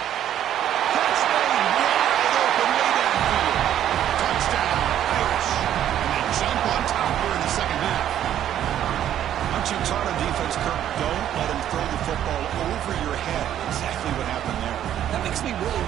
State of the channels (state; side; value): quieter; left; 11.0 dB